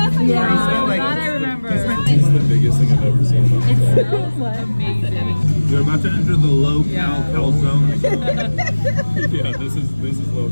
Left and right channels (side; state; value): both; inverted; correlation -1.00